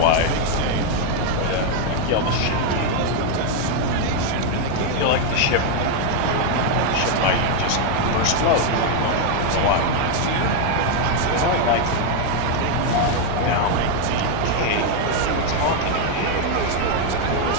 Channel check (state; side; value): different; both; correlation 0.01